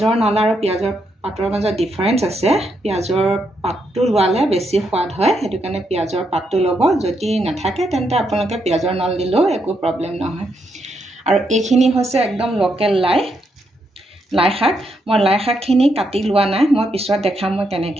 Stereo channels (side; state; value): both; normal; correlation 0.79